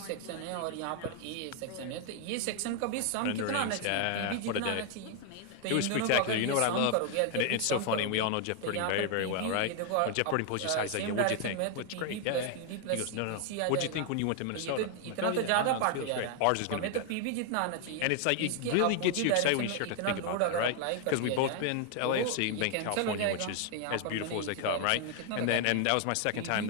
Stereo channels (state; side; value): different; both; correlation 0.00